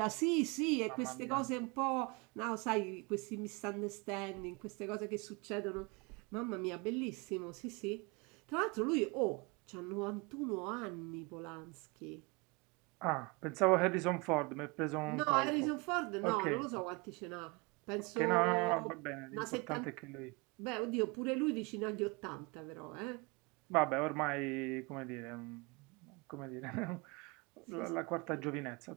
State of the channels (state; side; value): quieter; left; 28.1 dB